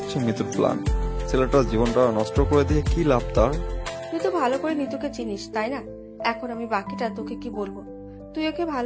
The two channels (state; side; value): identical; both; correlation 1.00